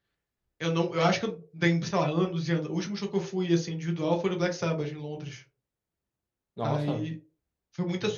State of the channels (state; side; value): identical; both; correlation 1.00